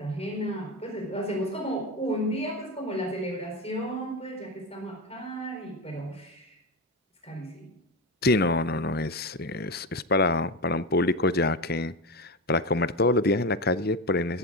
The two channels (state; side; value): normal; both; correlation 0.18